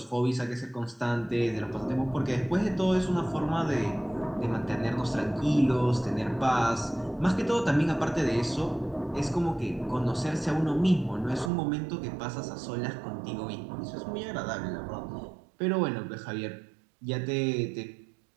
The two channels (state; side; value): drops out; left; at 11.5 s